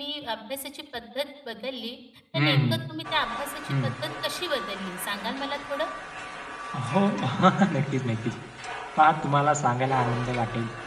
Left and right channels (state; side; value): identical; both; correlation 1.00